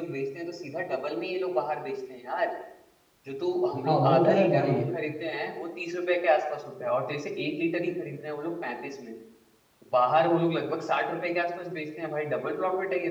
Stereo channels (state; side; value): identical; both; correlation 1.00